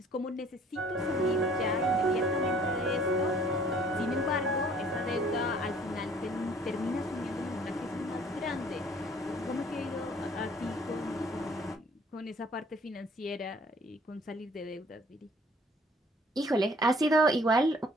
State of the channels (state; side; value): normal; both; correlation 0.57